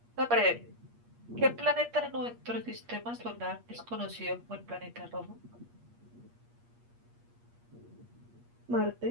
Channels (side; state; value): left; late; 8.4 ms